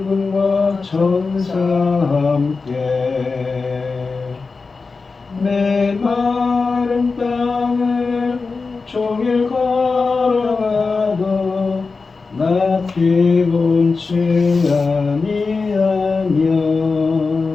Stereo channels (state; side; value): quieter; right; 4.3 dB